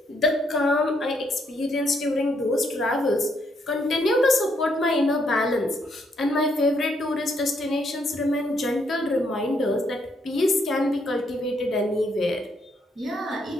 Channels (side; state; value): both; normal; correlation 0.74